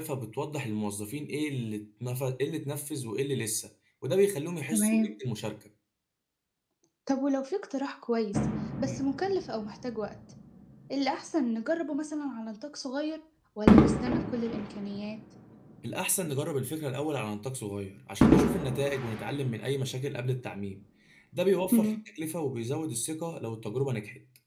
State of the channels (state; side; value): identical; both; correlation 1.00